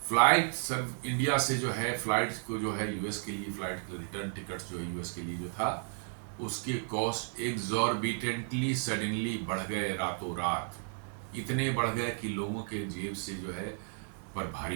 फ्लाइट सब इंडिया से जो है फ्लाइट को जो है यूएस के लिए फ्लाइट रिटर्न टिकट्स जो है यूएस के लिए जो था, उसके कॉस्ट एक्सॉर्बिटेंटली सडनली बढ़ गए रातों रात। इतने बढ़ गए कि लोगों के जेब से जो है पर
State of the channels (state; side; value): silent; left; 56 dB below the other